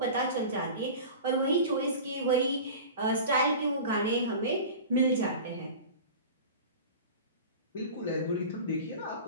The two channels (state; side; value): inverted; both; correlation -0.35